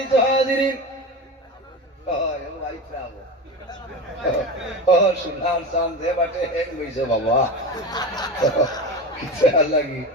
হাজিরিন, সোনার চান দে বাটে হেক লইছে বাবা, লাগি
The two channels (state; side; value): normal; both; correlation 0.26